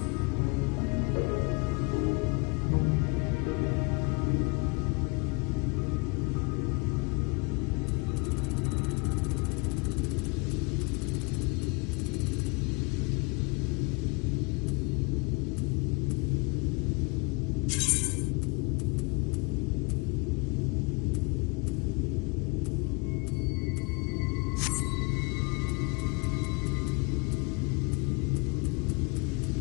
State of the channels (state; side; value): quieter; right; 29.0 dB